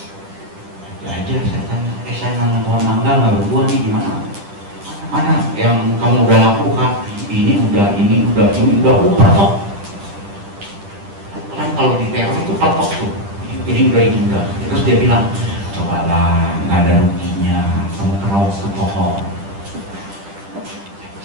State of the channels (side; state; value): left; late; 10 ms